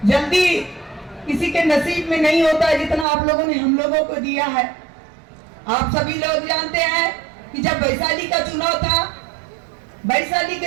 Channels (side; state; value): left; drops out; at 3.1 s